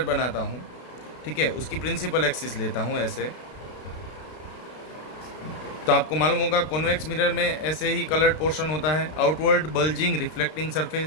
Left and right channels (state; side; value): late; right; 32 ms